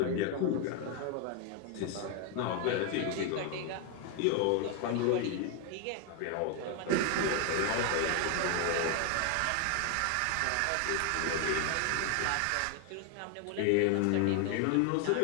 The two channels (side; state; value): both; different; correlation 0.01